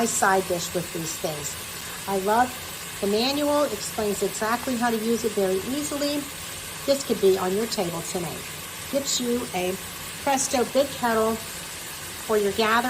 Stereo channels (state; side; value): identical; both; correlation 1.00